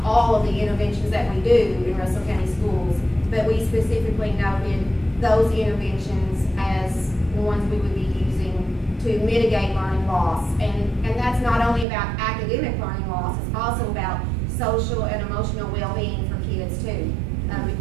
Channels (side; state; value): left; drops out; at 11.9 s